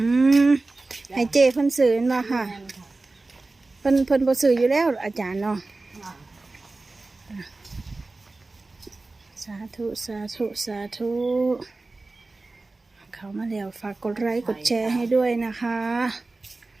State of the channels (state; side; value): quieter; left; 3.3 dB